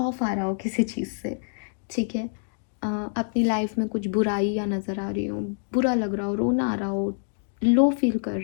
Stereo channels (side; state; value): right; silent; digital silence